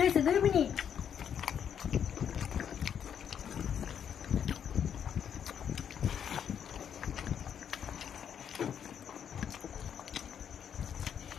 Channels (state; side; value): quieter; right; 8.4 dB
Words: হয়েছে, 2 মিনিট।